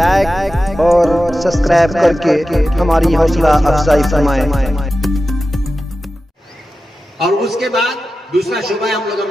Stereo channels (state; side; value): normal; both; correlation 0.93